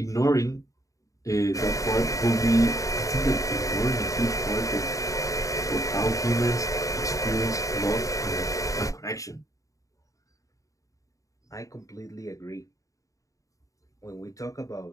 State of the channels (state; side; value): late; right; 0.16 ms